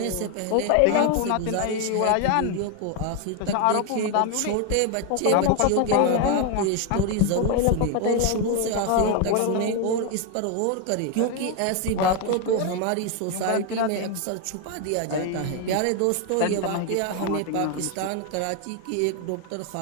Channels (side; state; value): both; different; correlation 0.01